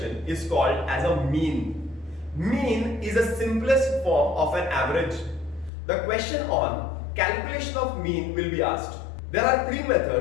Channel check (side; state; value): right; drops out; at 5.7 s